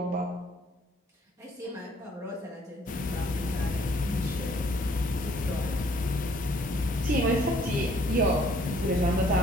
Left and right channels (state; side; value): normal; both; correlation 0.61